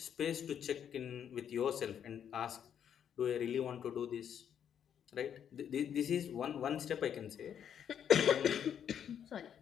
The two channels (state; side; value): quieter; right; 8.8 dB